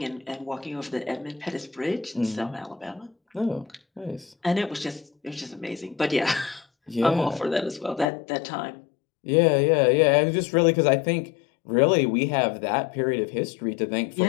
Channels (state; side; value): drops out; right; at 8.1 s